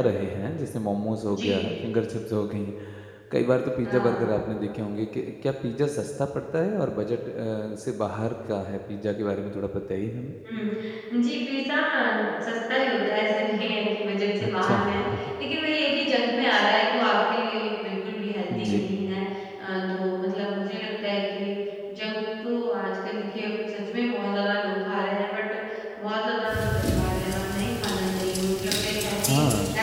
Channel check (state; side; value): identical; both; correlation 1.00